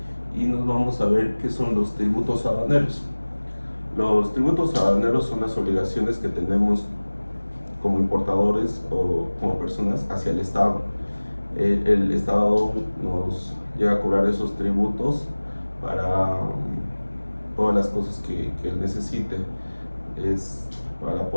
y nos vamos a ver qué son los tributos aduaneros. Los tributos aduaneros son las obligaciones que tenemos como importadores o como personas hacia el Estado. El Estado nos llega a cobrar esos tributos para todas las cosas que él necesite. Es para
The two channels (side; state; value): both; inverted; correlation -1.00